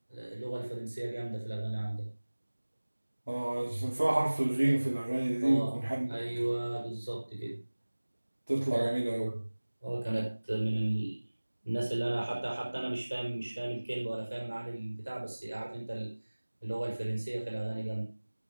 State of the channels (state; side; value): inverted; both; correlation -1.00